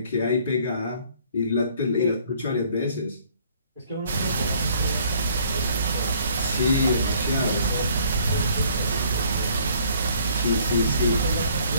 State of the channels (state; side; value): inverted; both; correlation -0.59